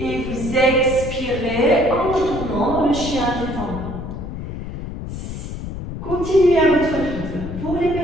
vous expirez en retournant dans le chien tête en bas. Continuez à votre rythme. Pour les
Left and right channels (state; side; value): noise; left; rumble, 8 dB below the sound